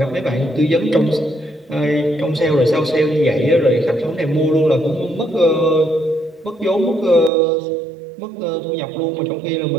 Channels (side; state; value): left; drops out; at 7.3 s